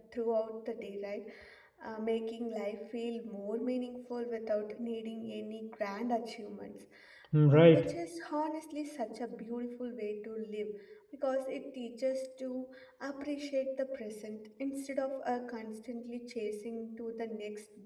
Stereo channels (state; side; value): identical; both; correlation 1.00